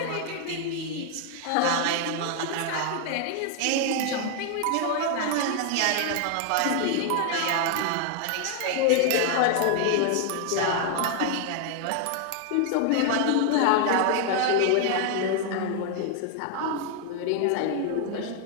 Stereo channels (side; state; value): both; different; correlation 0.00